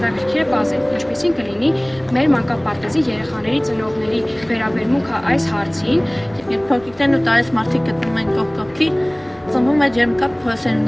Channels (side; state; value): left; noise; rumble, 28 dB below the sound